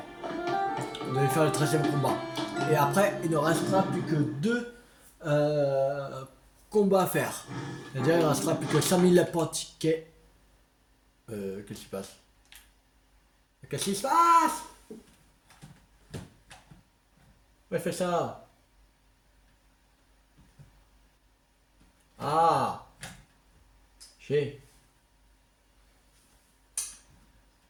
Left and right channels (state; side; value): identical; both; correlation 1.00